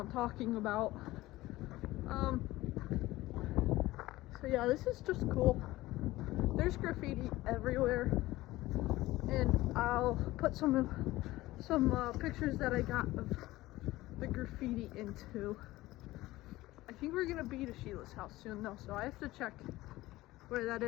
talking about. So yeah, this is just cool. There's graffiti everywhere, and I'll put some pictures that I got of the graffiti into. I think we're gonna be to Sheila's house soon though, so I have to check where that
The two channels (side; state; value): right; quieter; 17.7 dB